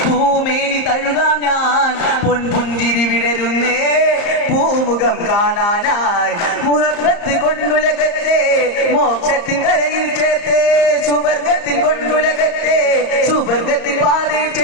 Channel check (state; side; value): late; right; 34 ms